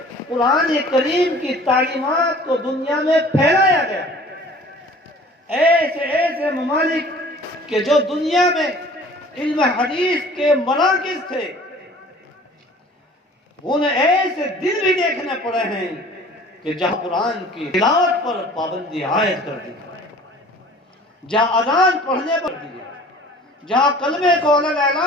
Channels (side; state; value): both; normal; correlation 0.48